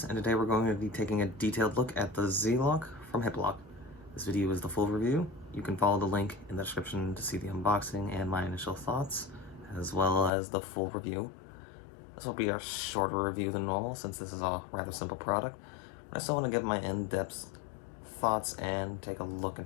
and today we're going to be taking a detailed look at the Z-Lok from Hiplok. This video is the full review. You can follow the link in the description to see the unboxing and my initial thoughts, as well as the full review. This will be a shorter review than normal since this is a rather simple product, but I still want to give my in-depth thoughts and take a look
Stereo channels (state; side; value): drops out; right; at 10.3 s